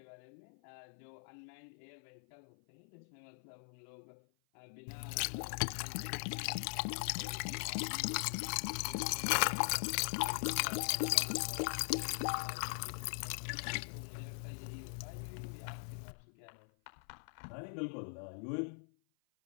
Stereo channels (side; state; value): right; silent; 51 dB below the other